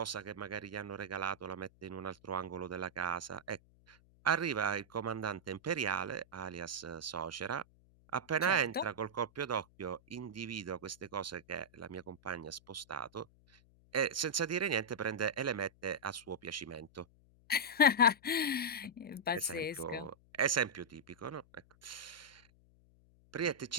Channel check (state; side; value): noise; left; hum, 28 dB below the sound